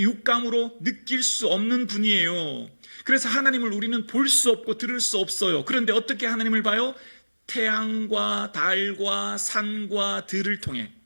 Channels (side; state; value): both; inverted; correlation -1.00